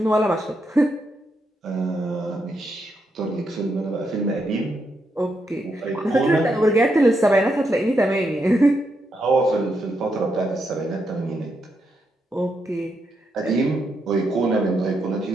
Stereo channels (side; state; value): both; normal; correlation 0.81